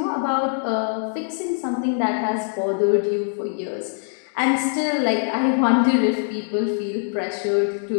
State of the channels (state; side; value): silent; right; digital silence